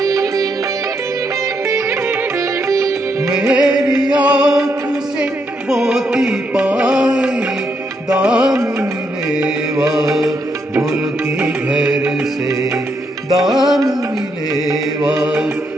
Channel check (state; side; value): normal; both; correlation 0.78